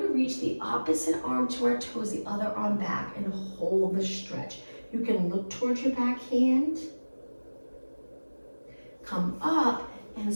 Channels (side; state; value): both; inverted; correlation -1.00